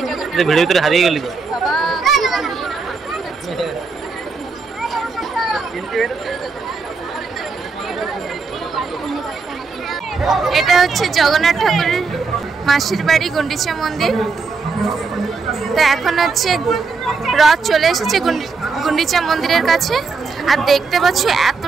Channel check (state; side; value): quieter; left; 4.6 dB